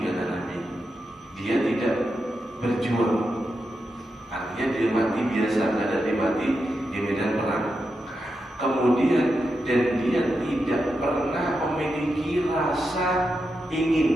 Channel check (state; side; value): normal; both; correlation 0.87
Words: kata Nabi, dia tidak berjuang, artinya dia mati biasa, tidak mati di medan perang. Kemudian dan dia tidak pernah memiliki rasa